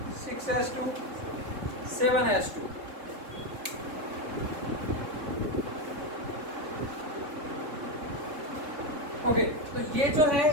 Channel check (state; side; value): late; left; 3.4 ms